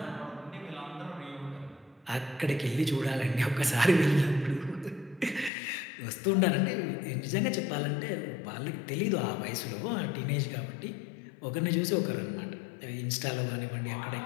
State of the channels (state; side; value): drops out; right; at 5.5 s